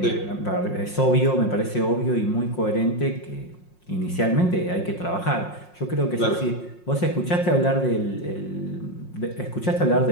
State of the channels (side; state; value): right; late; 5.6 ms